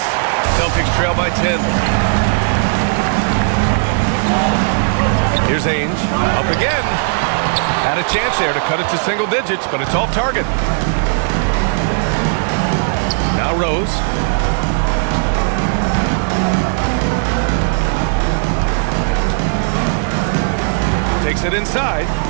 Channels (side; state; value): left; silent; digital silence